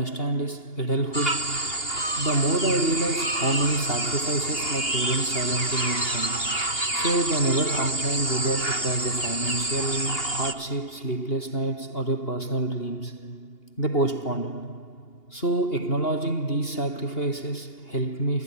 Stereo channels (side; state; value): right; late; 2.8 ms